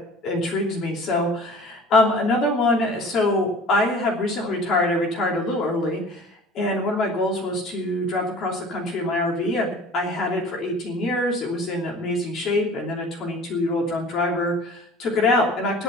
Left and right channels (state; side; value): normal; both; correlation 0.44